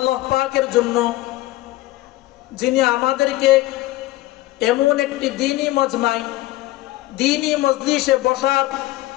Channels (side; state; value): right; quieter; 17.2 dB